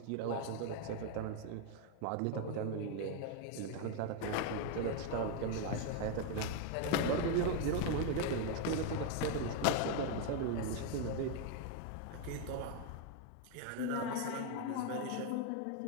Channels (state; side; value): different; both; correlation 0.01